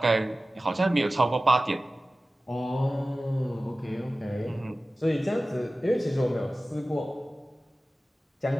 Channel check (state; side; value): normal; both; correlation 0.96